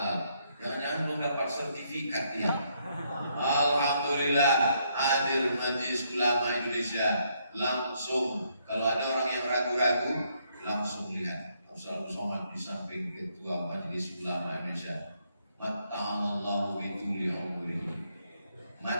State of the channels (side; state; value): both; inverted; correlation -0.73